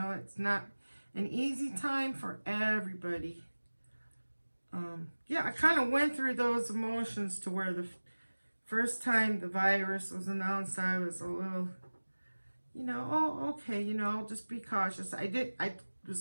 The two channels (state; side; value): inverted; both; correlation -1.00